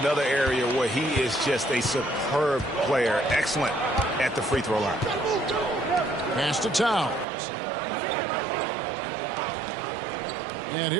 area where he is just a superb player. Excellent at the free throw line. Pass to Towns. And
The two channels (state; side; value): drops out; left; at 7.2 s